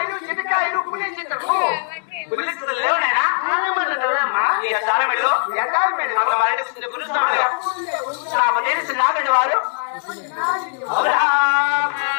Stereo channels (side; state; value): right; silent; digital silence